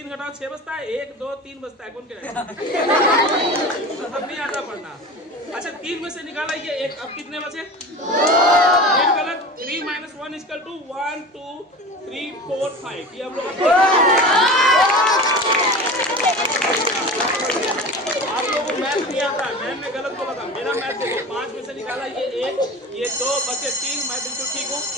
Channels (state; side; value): normal; both; correlation 0.33